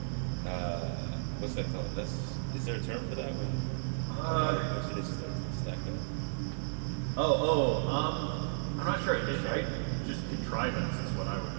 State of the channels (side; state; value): left; silent; digital silence